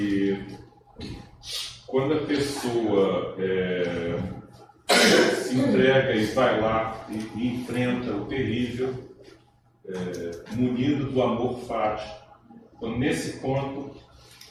quando a pessoa se entrega e vai lá e enfrenta o terrível, munido do amor fático, então, nesse ponto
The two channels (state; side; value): identical; both; correlation 1.00